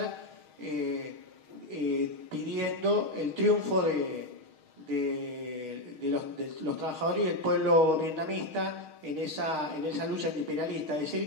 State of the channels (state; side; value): late; left; 6.4 ms